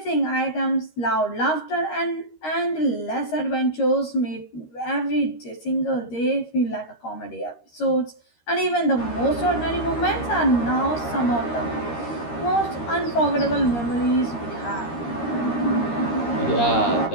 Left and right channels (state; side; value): late; right; 13 ms